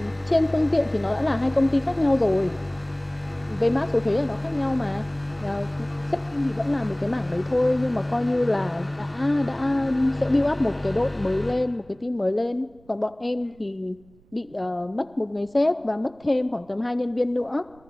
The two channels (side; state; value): right; noise; rumble, 29 dB below the sound